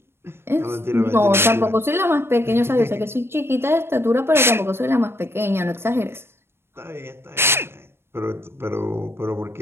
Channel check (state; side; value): late; left; 0.12 ms